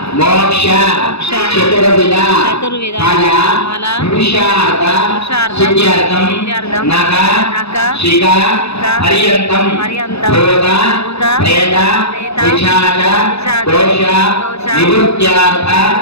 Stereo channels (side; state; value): right; late; 0.79 ms